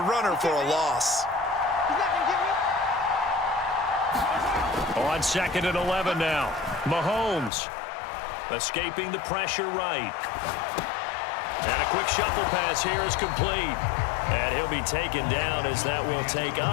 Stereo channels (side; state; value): right; drops out; at 7.5 s